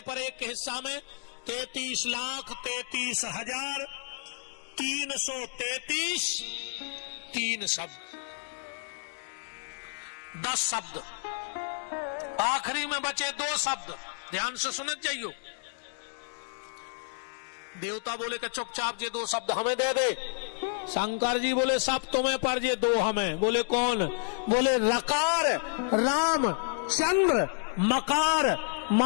पर एक हिस्सा में 33 लाख 33,000 333 3 शब्द, 10 शब्द, आखिरी में बचे 2 शब्द। ध्यान से सुनत जाइयो। देवता बोले कि चुपचाप ये 2 शब्द हमें दे दे। शंकर जी बोले सब तुम्हें पर ये 2 हमें। बोले कौन? बोले रकार राम चंद्र, मकार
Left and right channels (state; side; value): silent; right; digital silence